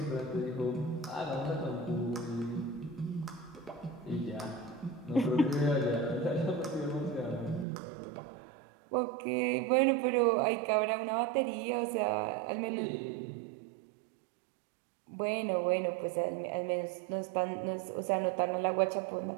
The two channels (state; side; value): drops out; left; at 7.7 s